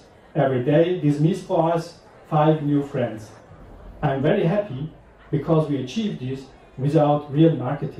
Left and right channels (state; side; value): identical; both; correlation 1.00